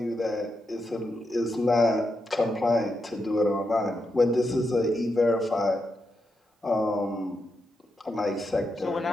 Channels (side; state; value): both; normal; correlation 0.85